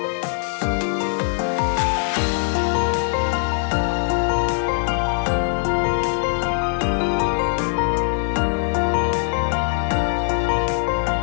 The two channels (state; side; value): silent; right; 64 dB below the other